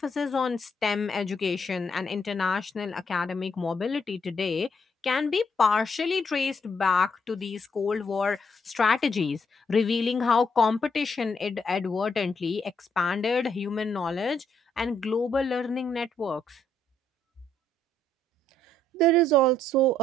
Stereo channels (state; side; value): normal; both; correlation 0.72